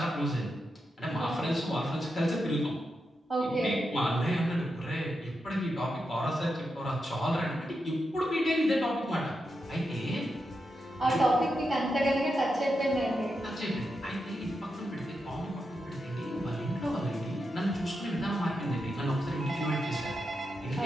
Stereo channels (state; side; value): normal; both; correlation 0.87